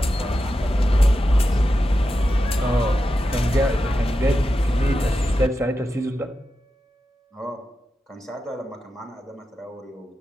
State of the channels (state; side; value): normal; both; correlation 0.90